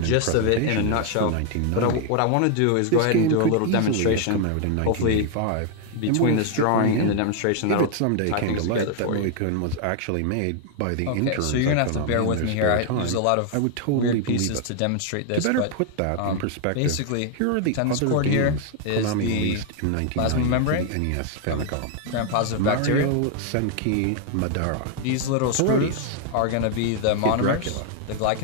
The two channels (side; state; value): both; different; correlation 0.00